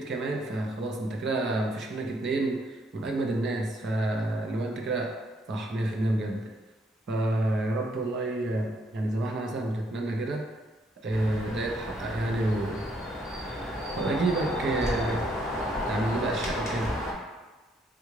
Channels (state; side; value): normal; both; correlation 0.71